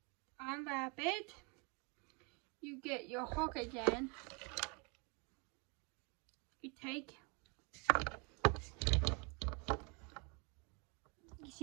unwrap it. You get your hook again. You take, you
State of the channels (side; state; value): left; quieter; 32.1 dB